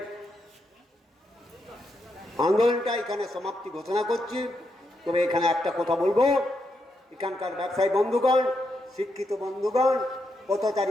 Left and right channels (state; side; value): normal; both; correlation 0.82